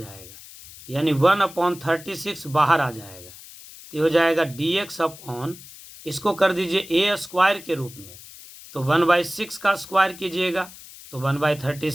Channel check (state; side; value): noise; left; hiss, 18 dB below the sound